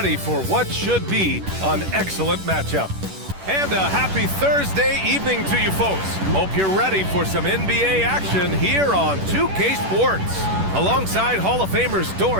for what should be an excellent matchup. And a happy Thursday evening to you folks. Hope you're ready for some NBA action here on 2K Sports. Alongside Hall of Famers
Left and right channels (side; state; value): left; late; 10 ms